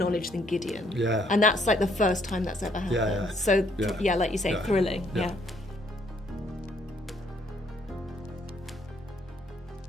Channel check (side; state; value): both; normal; correlation 0.68